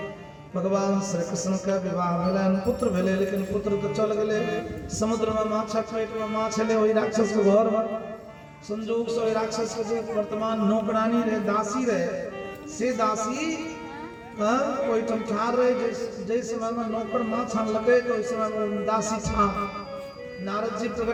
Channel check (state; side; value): identical; both; correlation 1.00